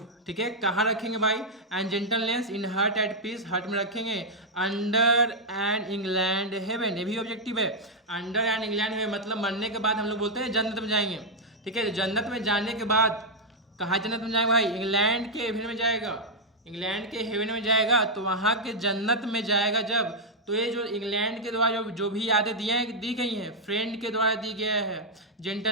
ठीक है। कहाँ रखेंगे भाई, and gentleness in heart at peace, heart में रखेंगे। अंडर एंड इंग्लैंड हेवन, ये भी ऑब्जेक्टिव है। अंडर एंड इंग्लैंड हेवन मतलब मरने के बाद हम लोग बोलते हैं जन्नत में जाएंगे, ठीक है। जन्नत में जाने के बाद कहाँ जन्नत में जाएगा भाई, इंग्लैंड के हेवन में जाएगा, इंग्लैंड के हेवन में जाएगा, तो वहाँ के जन्नत में जाएगा जब, तो ये जो इंग्लैंड के द्वारा जो भी यादें दी गई हैं, फ्रेंड के द्वारा दी गया है,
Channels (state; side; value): normal; both; correlation -0.03